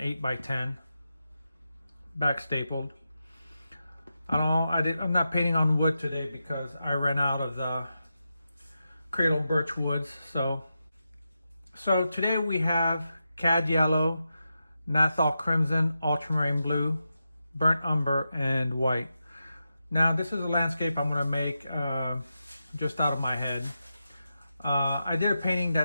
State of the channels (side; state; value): both; inverted; correlation -0.88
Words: back stapled. I'm not painting on wood today because I ran out of the cradle birch woods. So today we have cad yellow, Nathal crimson, ultramarine blue, burnt umber, and white. Now this is a landscape I'm going to make just out of my head. I did a painting